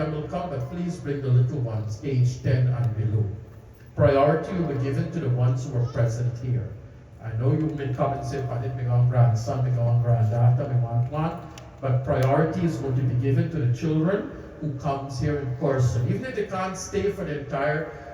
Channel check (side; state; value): both; identical; correlation 1.00